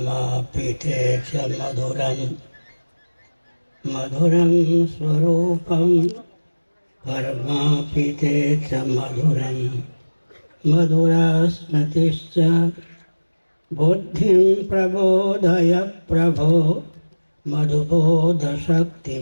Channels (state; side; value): inverted; both; correlation -1.00